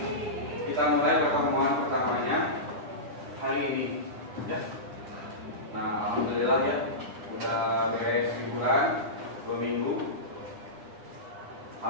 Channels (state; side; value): late; left; 9.8 ms